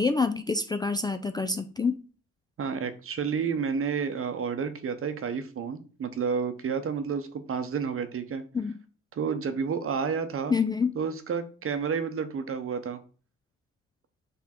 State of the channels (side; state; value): both; normal; correlation 0.34